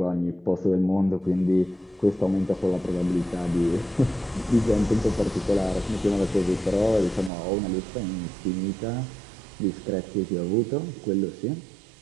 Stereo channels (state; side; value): drops out; left; at 7.3 s